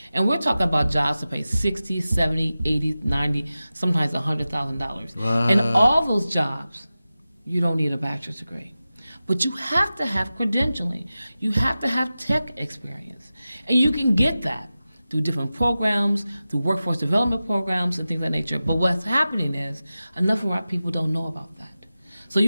And we're talking about jobs that pay $60, $70, $80, $90, sometimes $100,000. And all those jobs, you don't need a bachelor's degree. But you have to have credentialing. You have to have tech experience. And you can get that through different programs, through workforce development programs and things of that nature. But what's happening is enough of our people don't know about that. So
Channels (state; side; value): inverted; both; correlation -0.95